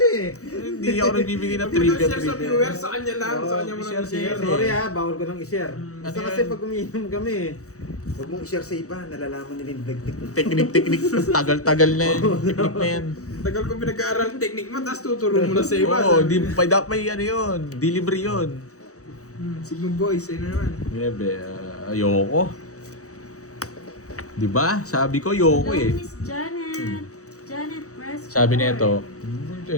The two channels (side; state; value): right; late; 0.65 ms